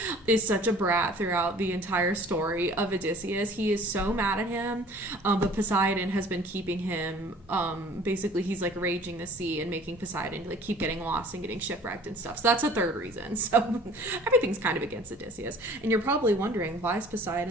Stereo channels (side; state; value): left; noise; hum, 25 dB below the sound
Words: is such a brat throughout the entire story of Odysseus. He is so mad at him, but Poseidon has been keeping him, basically he's raging the sea and making Poseidon keep getting lost and getting shipwrecked and stuff. So that's a third reason. So everything's kind of against Odysseus. And you're probably wondering, why is